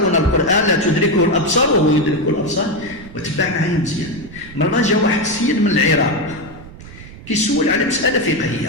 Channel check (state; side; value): noise; right; rumble, 17 dB below the sound